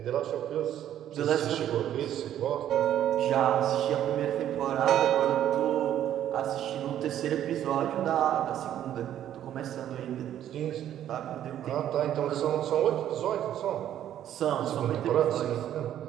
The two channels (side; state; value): left; quieter; 11.1 dB